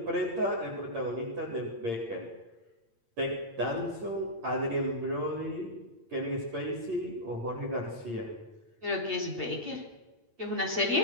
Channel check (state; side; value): late; left; 8.7 ms